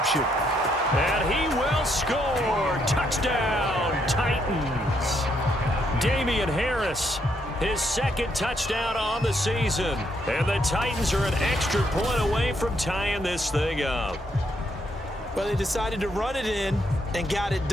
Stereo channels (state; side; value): normal; both; correlation 0.75